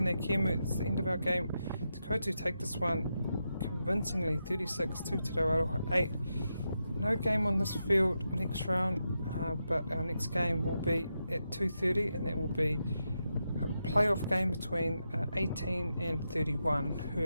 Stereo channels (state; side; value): inverted; both; correlation -0.86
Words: Kemu, it's the end of our game. Te Koutu take this one convincingly, 36 to Te Rawaroha 8. No game on this field next round, but our next game will be at 2:30, and that will be a playoff game between 18 and 31,